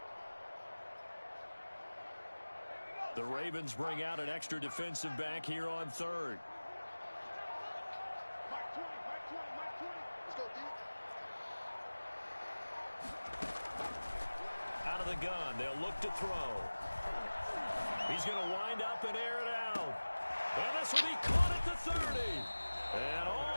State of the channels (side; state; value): both; inverted; correlation -1.00